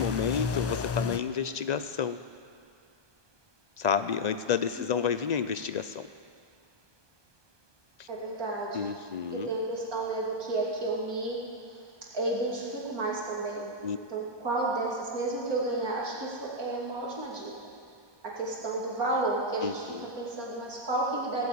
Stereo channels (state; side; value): late; left; 1.2 ms